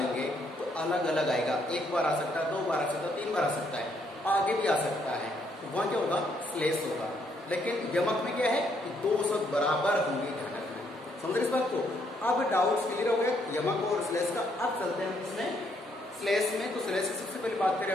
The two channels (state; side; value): normal; both; correlation 0.72